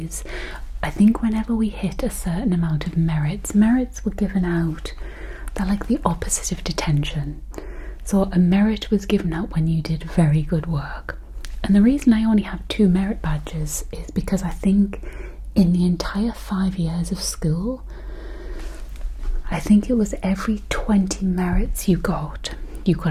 I think whenever we hit a certain amount of merits were given out. They're like the opposite of detention. So a merit was given out when you did very good work. And the reason I only have 2 merit badges is because I think in the entire 5 years of school, I think it was every 20 merits you got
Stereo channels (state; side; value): identical; both; correlation 1.00